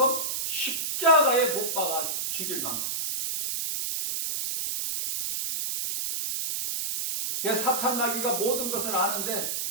십자가에 못 박아 죽일 만큼. 그래서 사탄 마귀가 모든 것을 아는데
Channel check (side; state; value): right; noise; hiss, 2 dB below the sound